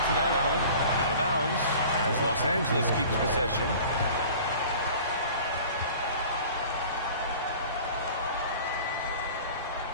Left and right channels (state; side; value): inverted; both; correlation -0.44